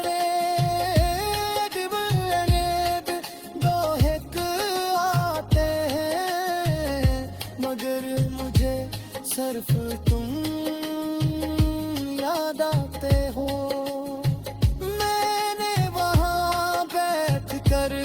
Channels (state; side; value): identical; both; correlation 1.00